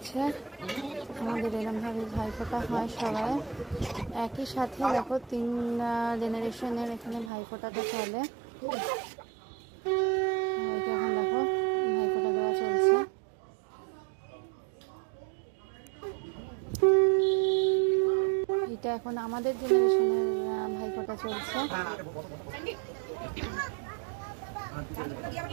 আমাদের এরমভাবে ভাইফোঁটা হয় সবাই একই সাথে। দেখো 3 জেনারেশনের এখানে ভাইফোঁটাটা চলে। এখন দেখো ভাইফোঁটা দেওয়া চলছে। এটা এখন আমাদের জেনারেশনের ভাইফোঁটা চলছে।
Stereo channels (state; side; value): drops out; left; at 7.3 s